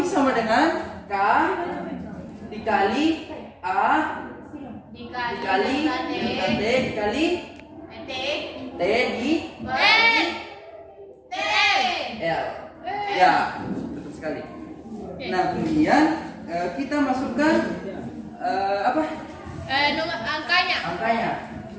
sama dengan K dikali A dikali delta T dikali T di L. Ya, betul sekali. Nah, kemudian kita masukkan apa? Nomor angkanya. Angkanya.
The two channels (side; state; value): both; identical; correlation 1.00